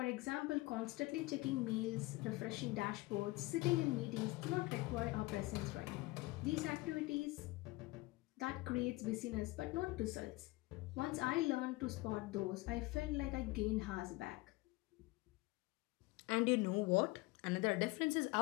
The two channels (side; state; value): right; quieter; 21.5 dB